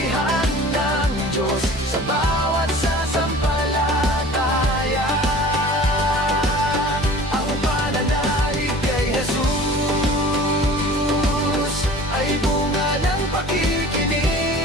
ng Diyos sa bawat sasampalataya. Ang pananalig kay Jesus ay bunga ng pakikinig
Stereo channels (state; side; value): normal; both; correlation 0.43